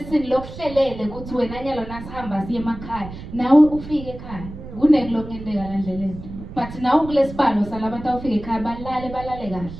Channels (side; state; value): right; noise; rumble, 12 dB below the sound